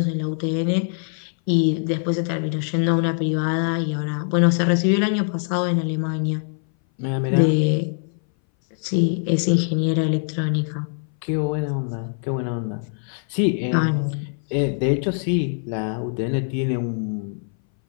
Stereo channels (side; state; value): right; silent; 60 dB below the other